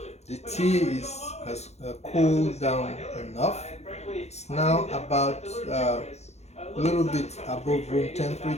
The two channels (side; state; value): right; late; 0.31 ms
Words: tea has cooled down enough. It's now about a little bit above room